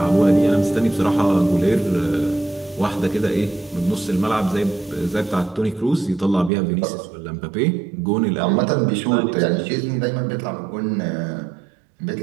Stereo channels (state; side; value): drops out; left; at 6.5 s